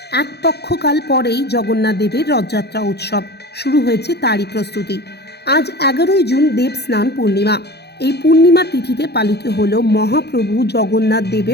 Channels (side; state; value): right; late; 0.48 ms